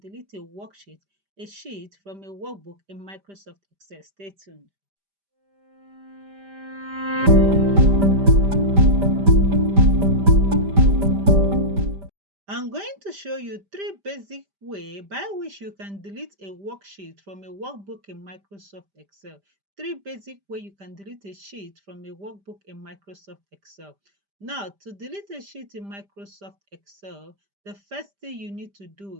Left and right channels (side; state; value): left; late; 5.0 ms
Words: a worksheet, a sheet from a workbook in Microsoft Excel. Stay tuned. I'm going to show you three basic ways by which you can delete a worksheet from a workbook in Microsoft Excel. Three basic ways you can delete a sheet from a workbook in Microsoft Excel. Now, to delete a sheet in Microsoft Excel, the first thing you need to